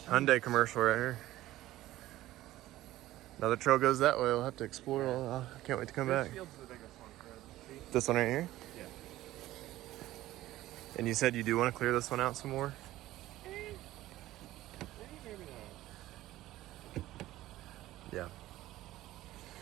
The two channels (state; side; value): quieter; left; 15.6 dB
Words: Hyundai commercial right here. Another trail goes that way. We'll have to explore. I can't wait to come back. This field's the biggest one, Fred. See? This one right here? Yeah. And you said you do want to clear this one out some more? Maybe not. Yeah.